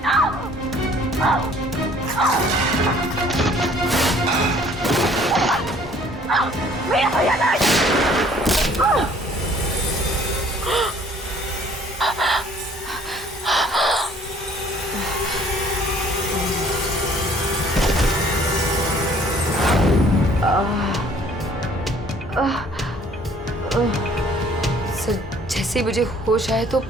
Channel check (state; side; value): normal; both; correlation 0.56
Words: सर जैसे मुझे होश आया तो